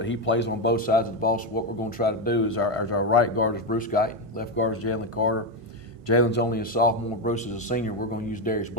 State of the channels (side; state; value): left; late; 1.5 ms